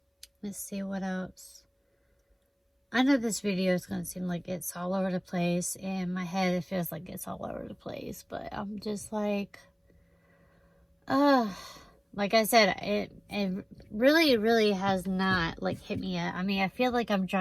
Let's see what else. I know this video is going to seem like it's all over the place. In my head, it feels like it's all over the place. But I'm just like I said, it really has not, like, hit me yet. I mean, I feel like I'm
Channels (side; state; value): both; identical; correlation 1.00